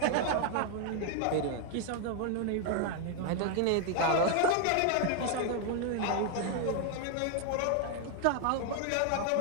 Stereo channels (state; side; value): different; both; correlation 0.00